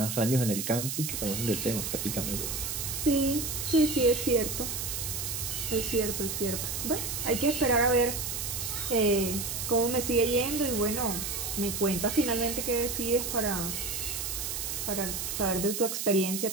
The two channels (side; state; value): right; noise; hiss, 3 dB below the sound